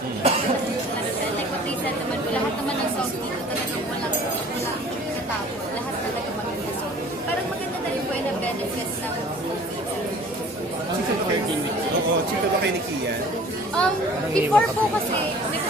Ano siya, like what they said naman po, lahat naman ng songs dito talagang walang katapos. Lahat talaga maganda. So, parang maganda na rin po yung benefits ng movie. Oo, chika ba kayo ni Kian? Before po kasi, may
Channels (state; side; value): normal; both; correlation 0.48